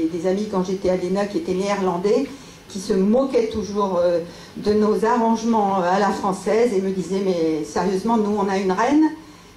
des amis quand j'étais à l'ENA qui étaient néerlandais, qui se moquaient toujours de nos arrangements à la française et me disaient, mais sérieusement, nous on a une reine,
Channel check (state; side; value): identical; both; correlation 1.00